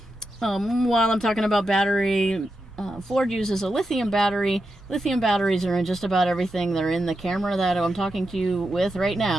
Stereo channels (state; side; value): normal; both; correlation 0.87